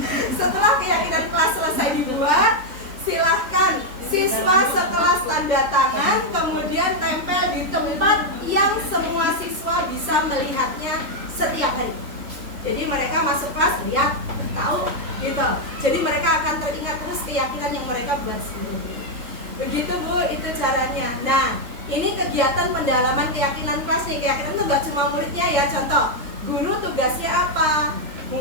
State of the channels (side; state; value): left; late; 3.5 ms